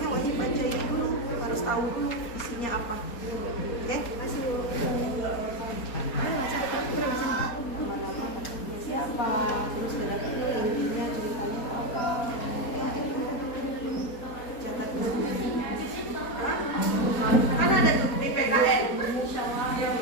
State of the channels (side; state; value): right; late; 4.2 ms